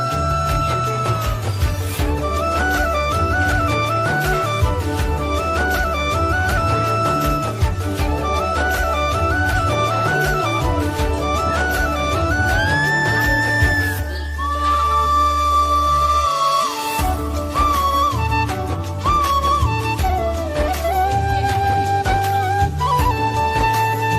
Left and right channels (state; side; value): identical; both; correlation 1.00